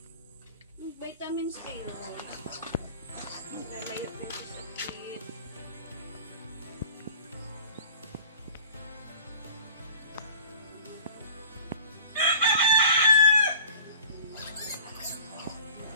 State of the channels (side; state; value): both; inverted; correlation -0.42